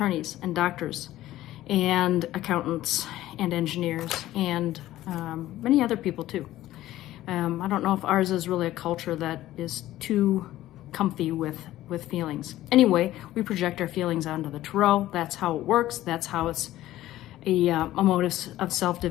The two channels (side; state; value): right; quieter; 14.8 dB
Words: and doctors and accountants and engineers and many other people too. I don't know if ours is really a culture that is too comfy with feelings. Anyway, we project our feelings onto the Tarot. That's how it works. That's how it's a motive of